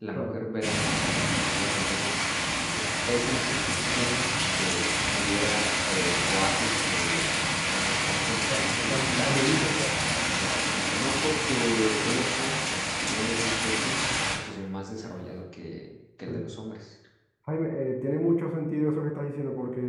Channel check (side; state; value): both; identical; correlation 1.00